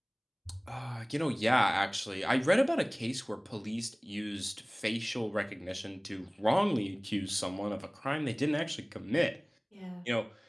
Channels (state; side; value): identical; both; correlation 1.00